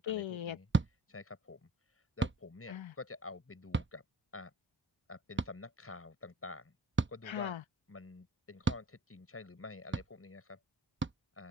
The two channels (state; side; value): normal; both; correlation 0.51